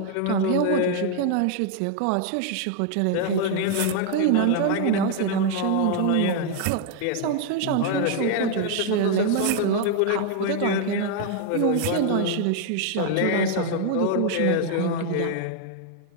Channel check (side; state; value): both; different; correlation 0.00